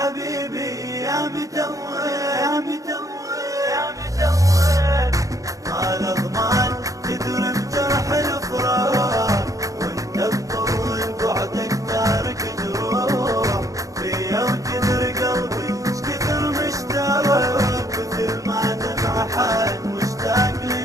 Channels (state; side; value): late; left; 0.16 ms